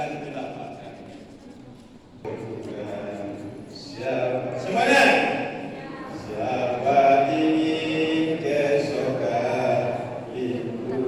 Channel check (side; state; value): both; identical; correlation 1.00